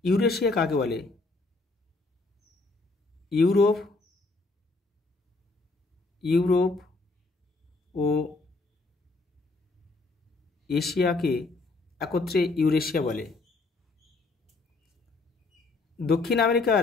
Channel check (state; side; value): quieter; right; 3.5 dB